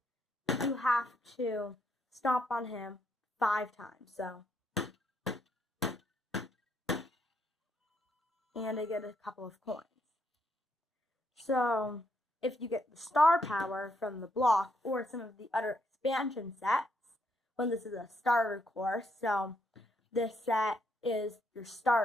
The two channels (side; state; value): both; normal; correlation 0.75